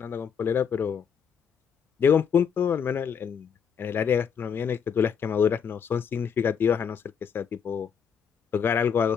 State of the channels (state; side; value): quieter; right; 7.1 dB